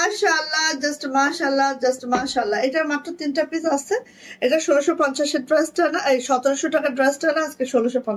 জাস্ট মাশাআল্লাহ, জাস্ট মাশাআল্লাহ। এটার মাত্র 3টা পিস আছে। এটা 1650-এর ড্রেসটা না, এই 1700 টাকার ড্রেসটা না, আজকে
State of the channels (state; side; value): identical; both; correlation 1.00